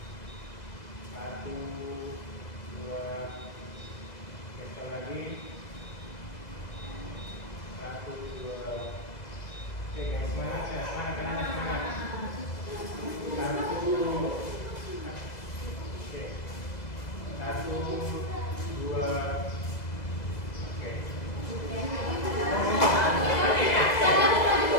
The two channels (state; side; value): late; right; 2.0 ms